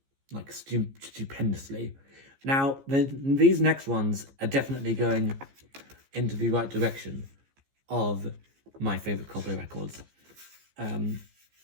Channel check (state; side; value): late; left; 15 ms